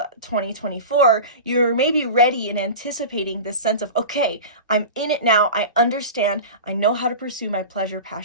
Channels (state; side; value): inverted; both; correlation -0.30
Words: 2024, you're maybe ready and anticipating this sense of, okay, I'm in it now. I understand. I know how to pursue my pleasure,